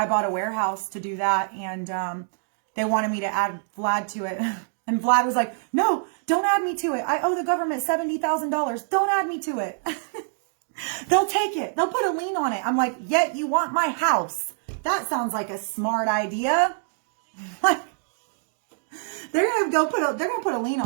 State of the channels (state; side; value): silent; left; digital silence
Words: bought a warehouse to do that, and they wanted me to add Vlad to it. And Vlad was like, no, don't add me to it. I owe the government $70,000. Don't add me to it. They'll take it. They'll put a lien on it. I'm like, yet you want my house. That sounds like a smart idea. Like, they're gonna put a lien